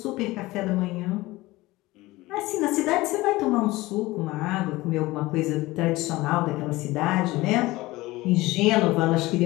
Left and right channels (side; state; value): right; quieter; 19.5 dB